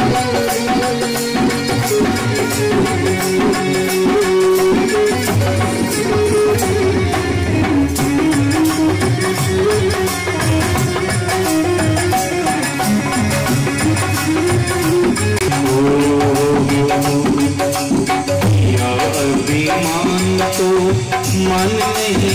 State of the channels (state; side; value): identical; both; correlation 1.00